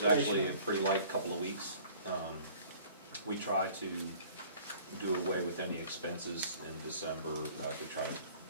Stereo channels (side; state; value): both; inverted; correlation -0.51